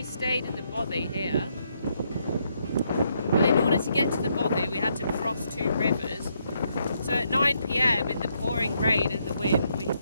stayed in the bothy here. But in order to get to the bothy, we had to cross 2 rivers. So at 9 PM in the pouring rain and the wind, we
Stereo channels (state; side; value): inverted; both; correlation -0.75